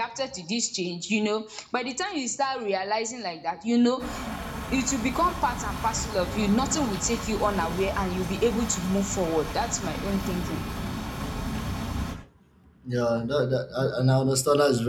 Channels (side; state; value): both; identical; correlation 1.00